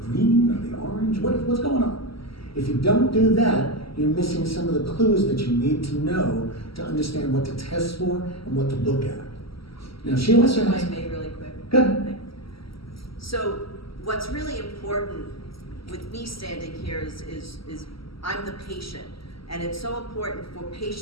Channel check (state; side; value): late; right; 0.75 ms